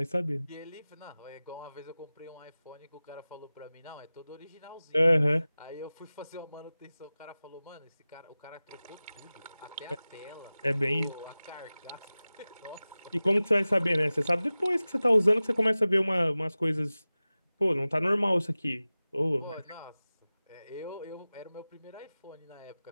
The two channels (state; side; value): inverted; both; correlation -0.97